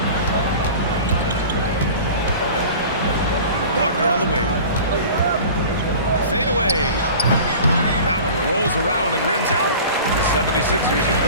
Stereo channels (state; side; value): inverted; both; correlation -0.40